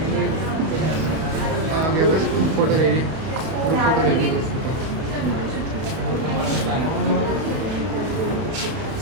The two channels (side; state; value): left; late; 32 ms